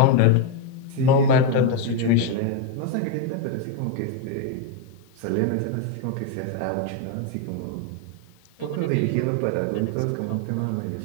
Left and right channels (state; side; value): different; both; correlation 0.02